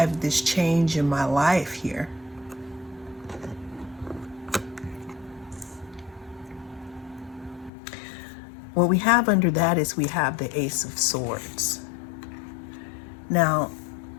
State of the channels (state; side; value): drops out; right; at 7.7 s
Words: this change in my life here? What we have under that is we have the Ace of Swords. Now,